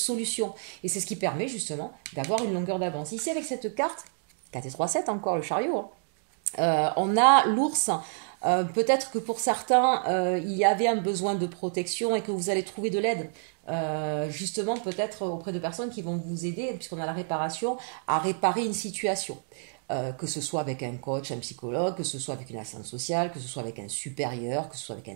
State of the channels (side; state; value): left; silent; 59 dB below the other